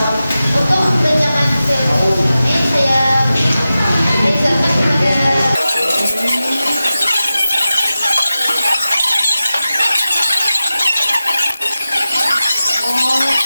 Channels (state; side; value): inverted; both; correlation -0.93